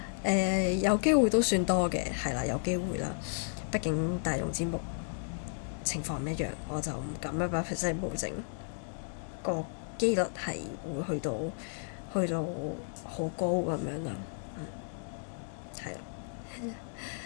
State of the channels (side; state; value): right; silent; digital silence